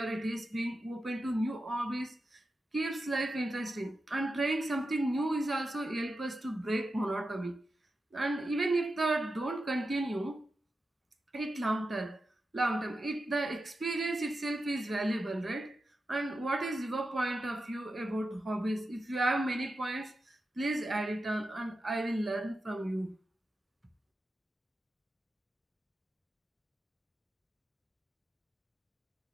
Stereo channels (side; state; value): both; normal; correlation 0.90